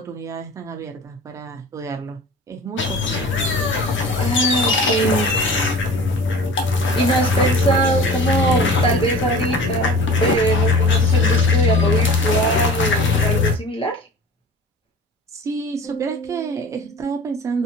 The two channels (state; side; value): normal; both; correlation 0.41